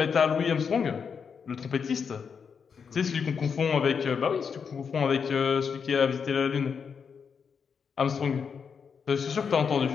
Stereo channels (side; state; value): right; quieter; 6.3 dB